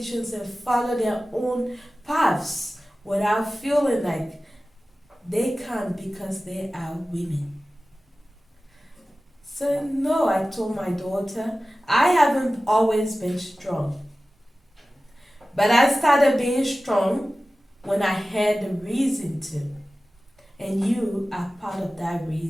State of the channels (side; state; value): both; normal; correlation 0.96